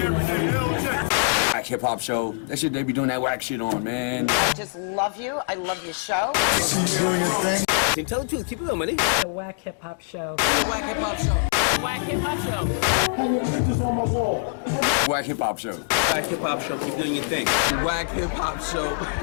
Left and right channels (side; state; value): right; silent; digital silence